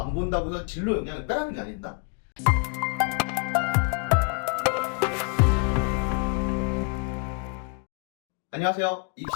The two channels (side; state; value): right; quieter; 37.5 dB